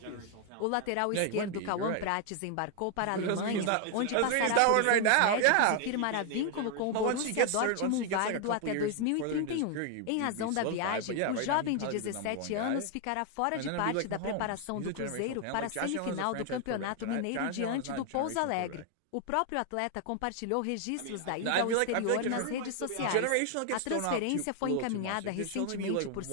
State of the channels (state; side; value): different; both; correlation 0.00